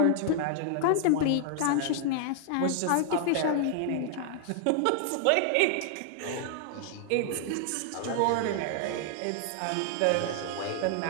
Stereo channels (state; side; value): different; both; correlation 0.00